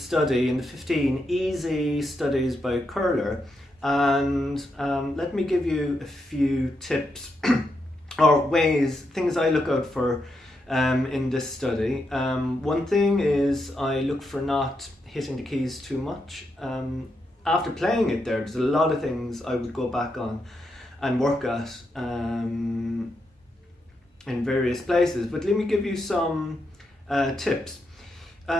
in the 15 easy studies by Kohler, and let me give you a few tips or ways, things I look out for in this study. One thing is I look for not hitting the keys too much. After playing it there's a lot of things I would go back on and work at in various places, but let me give you some tips.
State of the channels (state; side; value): normal; both; correlation 0.83